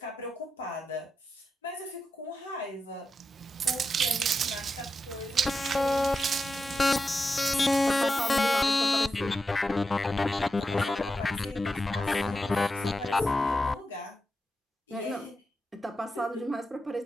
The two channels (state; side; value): normal; both; correlation 0.88